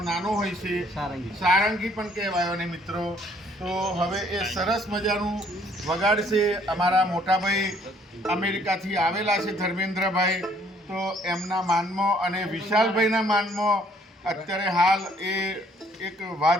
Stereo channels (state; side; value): normal; both; correlation 0.63